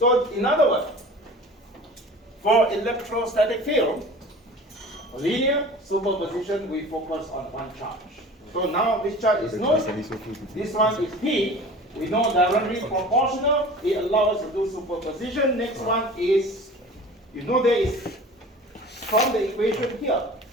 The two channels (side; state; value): both; normal; correlation 0.40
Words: in other words, for electrostatic field, linear superposition, we focus on one charge. So now this charge is known. This one is P. We know directly proportional. It allows us to do superposition. Next one is, you know there is, from the equation here,